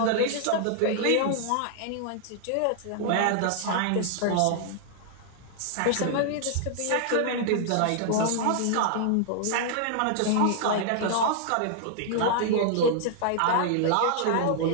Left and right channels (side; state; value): both; different; correlation -0.01